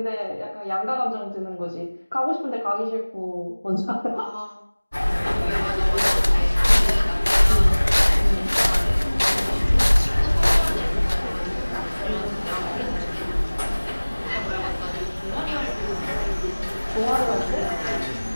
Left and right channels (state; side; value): inverted; both; correlation -1.00